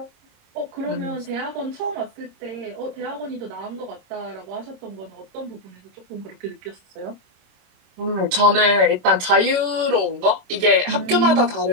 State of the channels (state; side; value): late; left; 26 ms